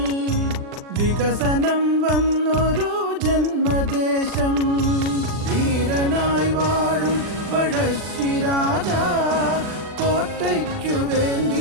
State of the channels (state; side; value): late; left; 40 ms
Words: വികസനം വന്നൊരു ജന്മദേശം. വീരനായി വാഴും പഴശ്ശിരാജ കോട്ടയ്ക്കു